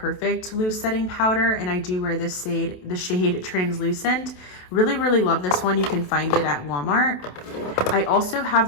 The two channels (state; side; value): late; right; 27 ms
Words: Loose Setting Powder, and I do wear this shade, the shade Translucent. Really, really love this one. You can find it at Walmart. I also